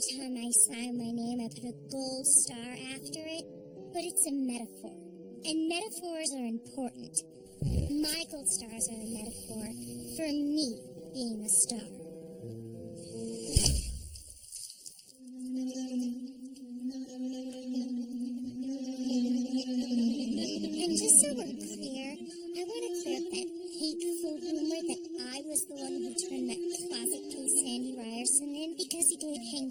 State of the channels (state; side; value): identical; both; correlation 1.00